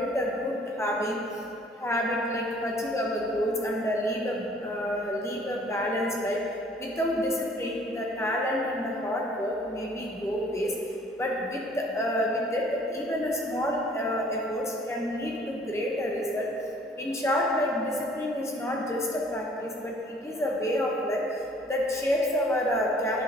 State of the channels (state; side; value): normal; both; correlation 0.56